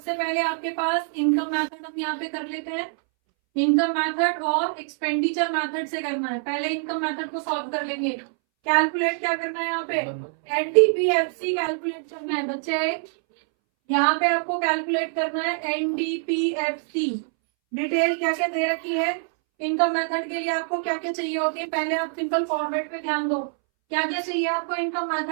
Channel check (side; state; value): left; silent; 62 dB below the other